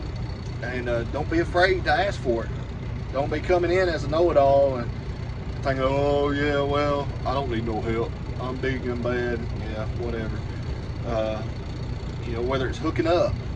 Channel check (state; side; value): identical; both; correlation 1.00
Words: And don't be afraid to ask for it. Don't be coming in as a know-it-all and thinking, oh yeah, well, I don't need no help. I'm big and bad. Yeah, whatever. You know, whether it's hooking up,